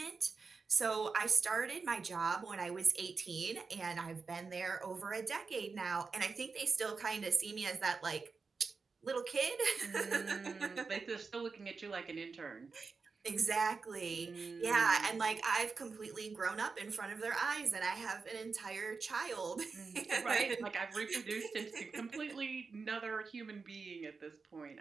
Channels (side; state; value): left; quieter; 4.7 dB